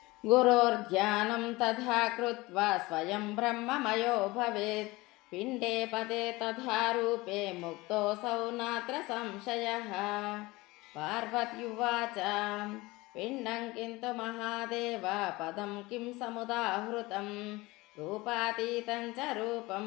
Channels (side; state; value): right; quieter; 21.4 dB